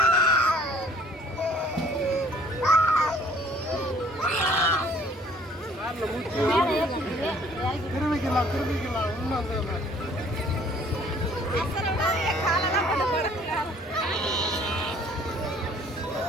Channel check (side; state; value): both; normal; correlation 0.56